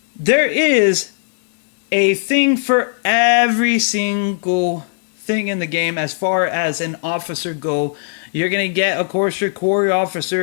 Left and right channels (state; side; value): silent; right; digital silence